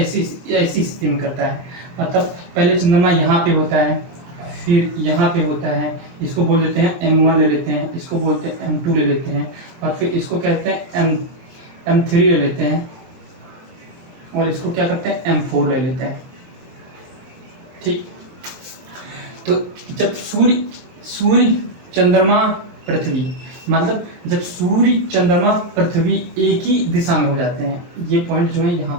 स्थिति में करता है। मतलब पहले चंद्रमा यहाँ पे होता है, फिर यहाँ पे होता है, इसको बोल देते हैं M1 ले लेते हैं, इसको बोलते हैं M2 ले लेते हैं, और फिर इसको कहते हैं M3 ले लेते हैं, और इसको क्या करते हैं M4 ले लेते हैं। ठीक, तो जब सूर्य चंद्रमा पृथ्वी, मतलब जब सूर्य चंद्रमा पृथ्वी एक ही दिशा में हो जाते हैं, ये पॉइंट जो है यहाँ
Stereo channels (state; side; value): late; left; 24 ms